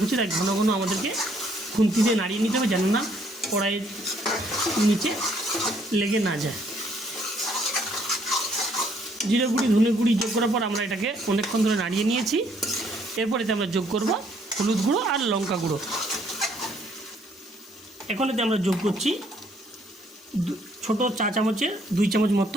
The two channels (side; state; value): both; normal; correlation 0.66